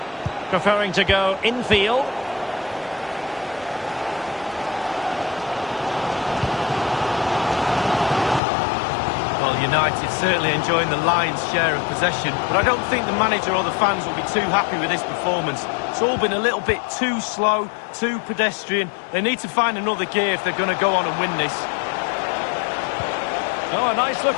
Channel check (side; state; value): right; drops out; at 8.4 s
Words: preferring to go infield. Well, United certainly enjoying the lion's share of possession, but I don't think the manager or the fans will be too happy with this performance. It's all been a little bit too slow, too pedestrian. They need to find another gear if they're going to go on and win this. Oh, a